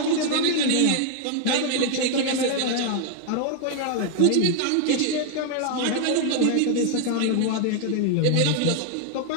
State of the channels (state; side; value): different; both; correlation 0.00